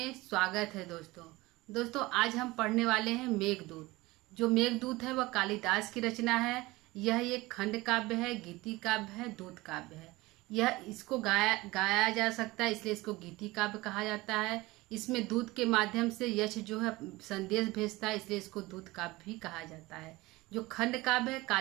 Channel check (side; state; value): left; quieter; 20.6 dB